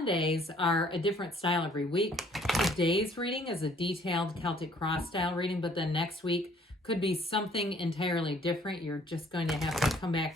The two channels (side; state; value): both; normal; correlation 0.60